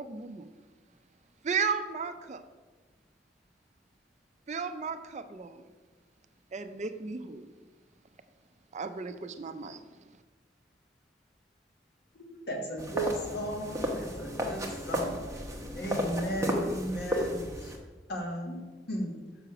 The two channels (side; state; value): both; normal; correlation 0.34